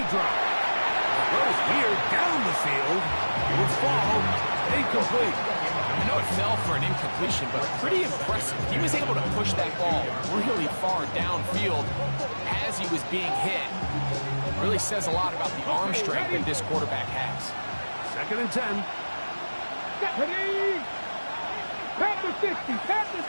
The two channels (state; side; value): inverted; both; correlation -1.00